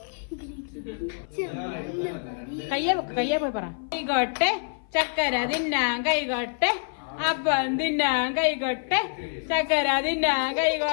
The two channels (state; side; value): silent; right; 56 dB below the other